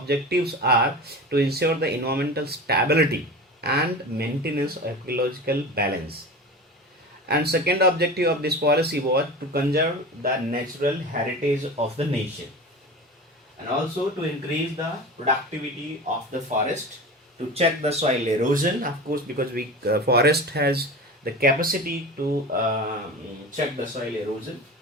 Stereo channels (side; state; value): both; normal; correlation 0.31